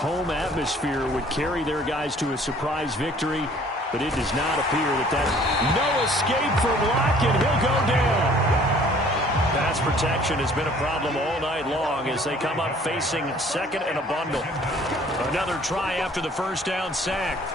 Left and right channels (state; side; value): normal; both; correlation 0.55